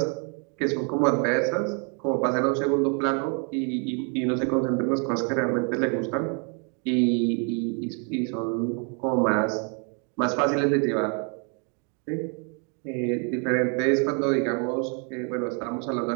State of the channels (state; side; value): quieter; left; 38.6 dB